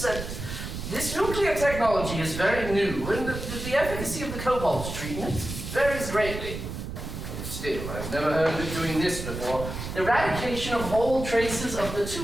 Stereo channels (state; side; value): noise; right; rumble, 7 dB below the sound